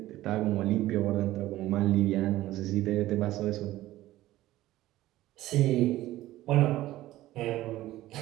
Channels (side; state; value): left; quieter; 15.6 dB